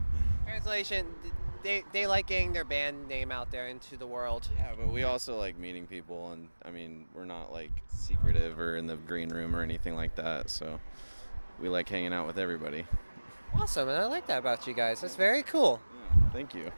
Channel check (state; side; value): inverted; both; correlation -1.00